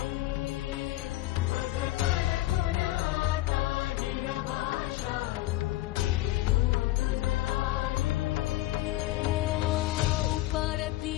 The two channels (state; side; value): quieter; right; 16.8 dB